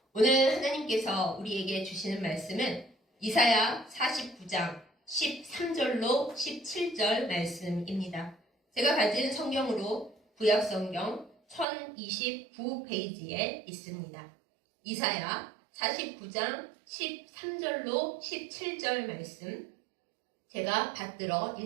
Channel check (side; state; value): left; drops out; at 11.7 s